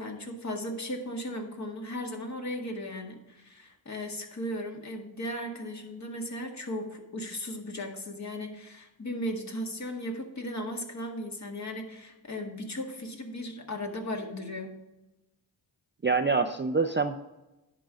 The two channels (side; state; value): both; normal; correlation 0.05